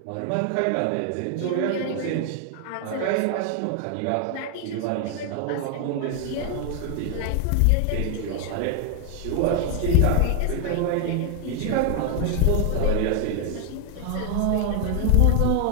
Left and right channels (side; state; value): both; different; correlation 0.00